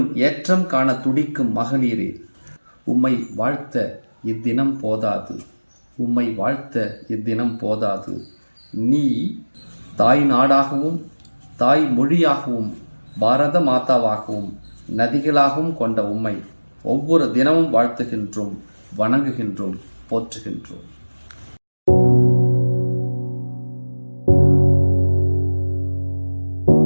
ஏற்றம் காண துடிக்கும் மகளிரே, உம்மை வாழ்த்த இத்தினம் போதாது. நீ தாய் நாடாகவும் தாய் மொழியாகவும் பாரத மாதாவாகவும் நதிகளாகவும் கொண்ட உம்மை ஒவ்வொரு தினமும் வாழ்த்துகின்றோம், வணங்குகின்றோம், போற்றுகின்றோம்.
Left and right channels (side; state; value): both; inverted; correlation -1.00